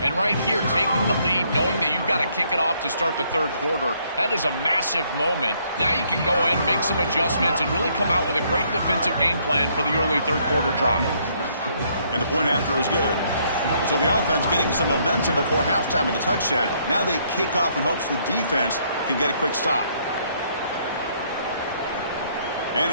And right here, taking the lead, knowing that you've got to kick it off to start the 3rd quarter, that is a massive moment. Now you can go in, make some adjustments, and really come out with a great defensive game plan for the early 3rd quarter drive. And the point after is good. So the offense getting some momentum before halftime with the touchdown. Now they kick off in hopes the defense can get a quick stop.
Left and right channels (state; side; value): inverted; both; correlation -0.68